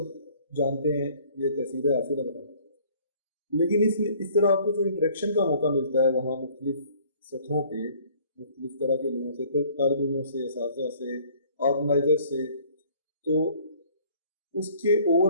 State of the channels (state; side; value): inverted; both; correlation -0.56